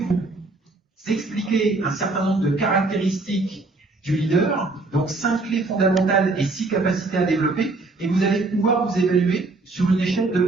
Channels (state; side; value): quieter; left; 3.4 dB